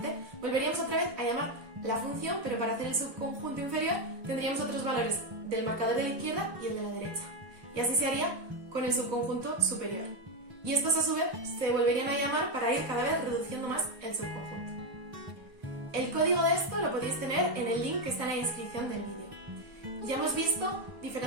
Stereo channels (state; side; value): late; left; 4.0 ms